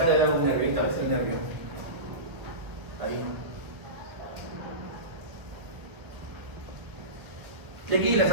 debe haber un nervio, tal vez el nervio. Ahí. Y aquí las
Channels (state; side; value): late; left; 1.5 ms